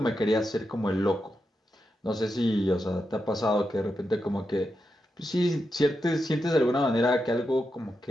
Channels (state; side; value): normal; both; correlation 0.87